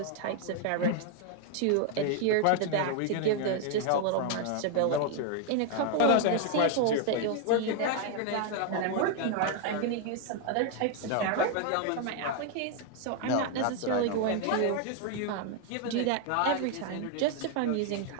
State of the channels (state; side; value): different; both; correlation 0.00